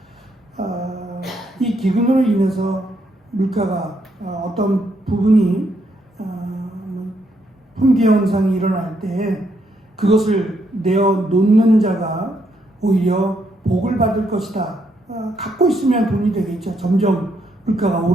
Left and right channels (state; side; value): normal; both; correlation 0.75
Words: 이 기근으로 인해서 물가가 어떤 부분이 품귀 현상이 일어날 때 그것을 내어 놓는 자가 오히려 복을 받을 것이다. 갖고 있으면 돈이 되겠죠. 점점 물가가